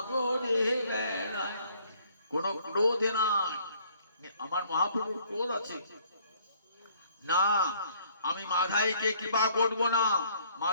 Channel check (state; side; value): inverted; both; correlation -0.61